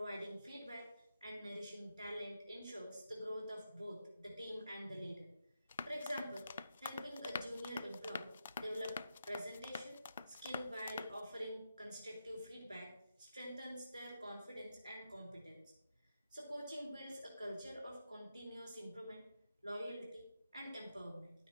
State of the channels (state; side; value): inverted; both; correlation -0.86